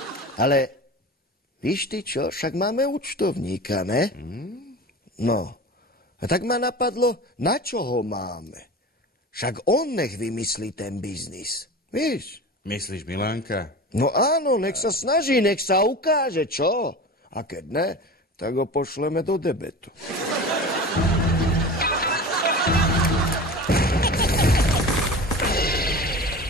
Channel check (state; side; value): normal; both; correlation 0.33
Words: Ale víš ty čo, však máme účtovníka, ne? No, a tak ma napadlo, na čo ho máme? Však on nech vymyslí ten biznis, víš? Myslíš Milánka? No áno, nech sa snaží, nech sa ukáže, čo? A keď ne, tak ho pošleme do debetu.